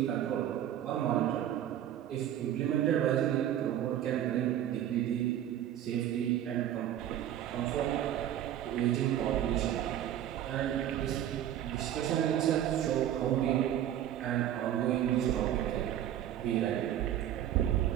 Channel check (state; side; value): quieter; left; 11.3 dB